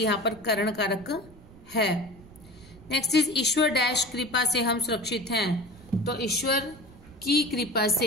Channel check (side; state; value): right; noise; rumble, 22 dB below the sound